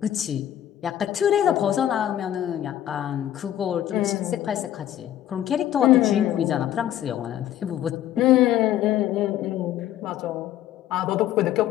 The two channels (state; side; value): quieter; right; 11.9 dB